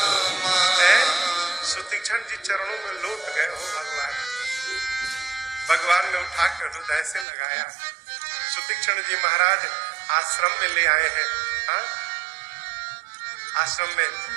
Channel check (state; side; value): drops out; left; at 7.2 s